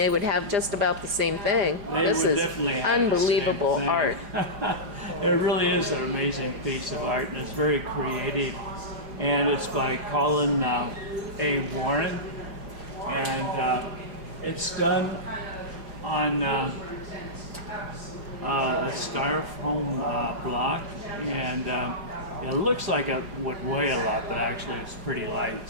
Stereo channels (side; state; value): left; late; 4.9 ms